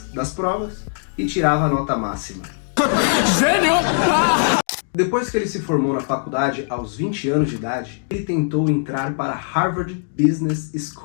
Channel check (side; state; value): right; silent; 65 dB below the other